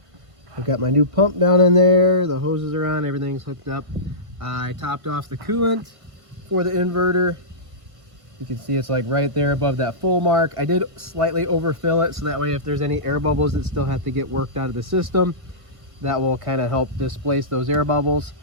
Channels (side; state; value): left; late; 1.5 ms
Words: I've got my new pump down in there, the hoses are on, everything's hooked up. I topped off the coolant for the inverter. You can see it's like right there above that full mark. I did slightly overfill it, so that way if there's any air bubbles that still have to get worked out of the system, that will kind of help displace those air bubbles.